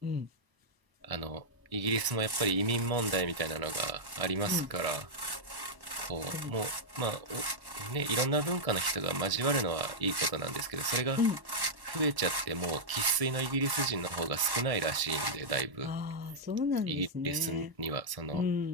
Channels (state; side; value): late; left; 1.0 ms